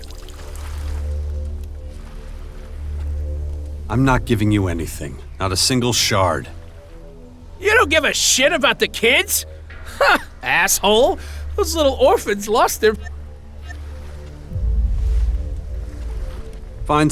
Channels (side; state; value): both; identical; correlation 1.00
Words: I'm not giving you anything. Not a single shard. You don't give a shit about the kids? Ha! Asshole! Those little orphans lost their... Find